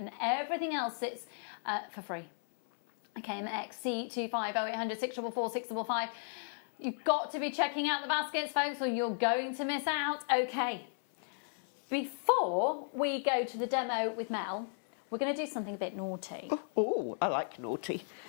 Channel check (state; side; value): silent; right; 55 dB below the other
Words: everything else sits for free. KMXC25 0800 644 655. You've got to be checking out the baskets, folks, or you're going to miss out. Okay. Before we go to the demo with Mel, we're going to do something a bit naughty. Oh, I like naughty.